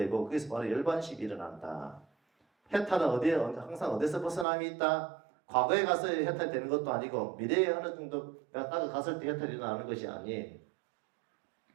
거기서 바로 열반식이 일어난다. 해탈은 항상 어디서 벗어남이 있다? 과거에 가서 해탈이 되는 것도 아니고 미래에 어느 정도 내가 딱 갔을 때 해탈이 일어나는 것이 아니에요.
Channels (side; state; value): left; drops out; at 4.5 s